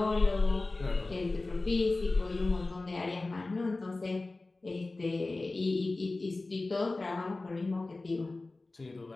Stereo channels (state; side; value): quieter; right; 3.2 dB